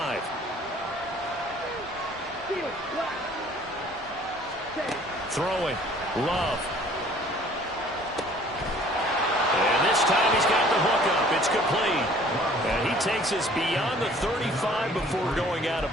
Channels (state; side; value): normal; both; correlation 0.54